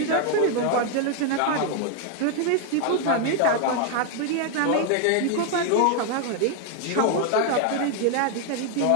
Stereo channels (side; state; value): both; different; correlation 0.01